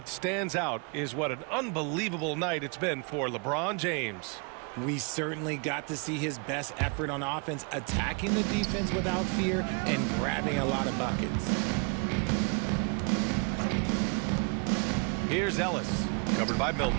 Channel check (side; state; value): left; quieter; 34.8 dB